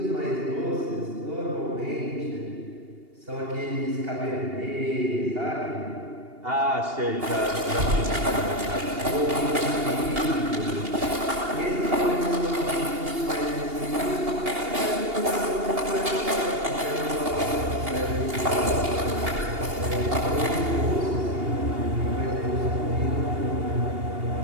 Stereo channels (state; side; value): late; left; 2.8 ms